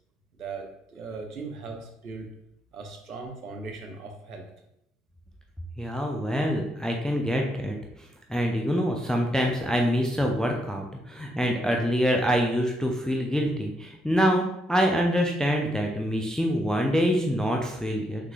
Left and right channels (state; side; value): normal; both; correlation 0.79